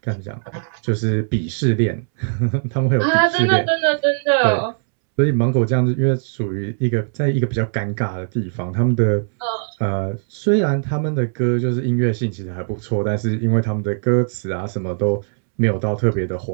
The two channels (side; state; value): left; silent; 66 dB below the other